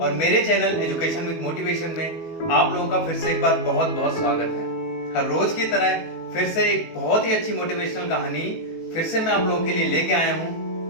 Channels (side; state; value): right; late; 18 ms